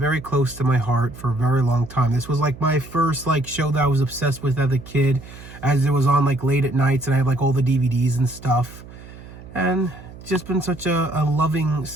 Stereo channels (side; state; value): right; noise; hum, 17 dB below the sound